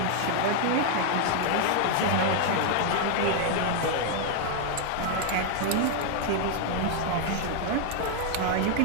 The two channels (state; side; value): different; both; correlation 0.00